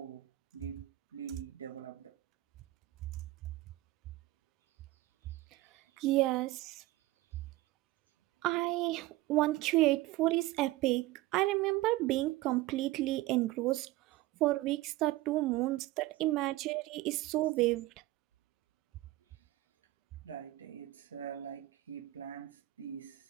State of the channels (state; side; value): quieter; left; 17.7 dB